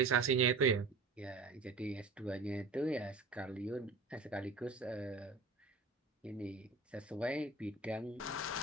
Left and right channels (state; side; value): quieter; left; 4.0 dB